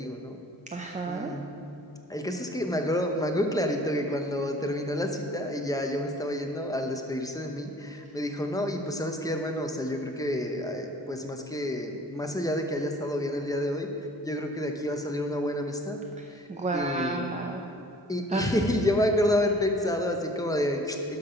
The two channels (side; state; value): both; normal; correlation 0.52